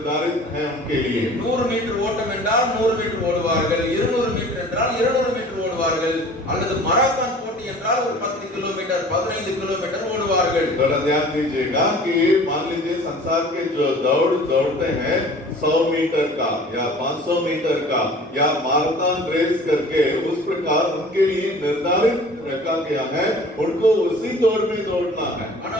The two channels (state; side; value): normal; both; correlation 0.46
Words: है उनके लिए. 100 மீட்டர் ஓட்டம் என்றால் 100 மீட்டர் ஓடுவார்கள், 200 மீட்டர் என்றால் 200 மீட்டர் ஓடுவார்கள், அல்லது மராத்தான் போட்டி என்றால் ஒரு 10 கிலோமீட்டர் 15 கிலோமீட்டர் ஓடுவார்கள். थोड़ा ध्यान दीजिएगा कि मान लीजिए संसार के जो दौड़ते हैं 100 मीटर का या 500 मीटर का या माराथन रेस करके उस प्रकार उनके लिए निर्धारित रखा गया है, उनको उसी दौड़ में दौड़ना है.